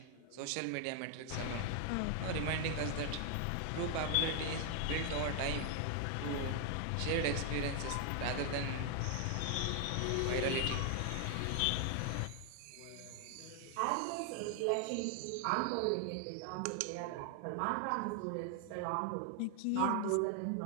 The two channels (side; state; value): both; different; correlation 0.00